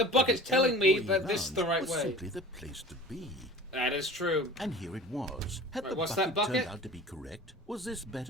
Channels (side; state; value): both; normal; correlation 0.41